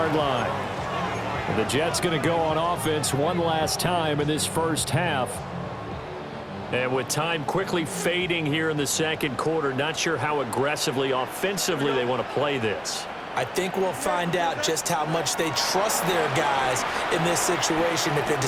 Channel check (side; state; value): both; identical; correlation 1.00